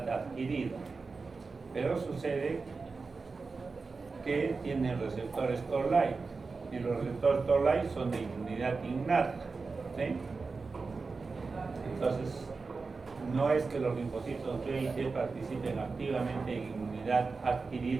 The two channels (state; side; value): quieter; left; 4.3 dB